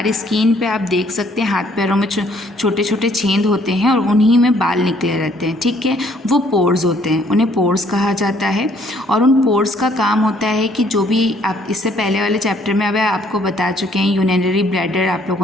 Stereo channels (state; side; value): normal; both; correlation 0.64